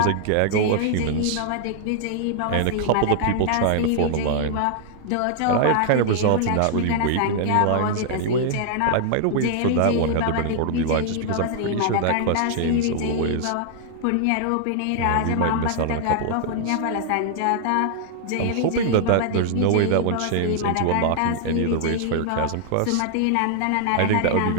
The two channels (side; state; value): both; different; correlation 0.00